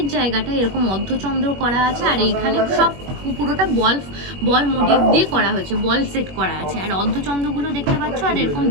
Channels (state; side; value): late; left; 21 ms